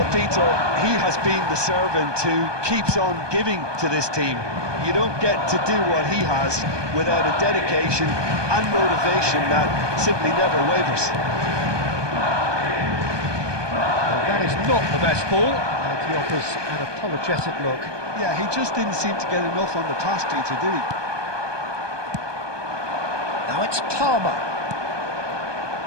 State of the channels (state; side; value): late; left; 1.2 ms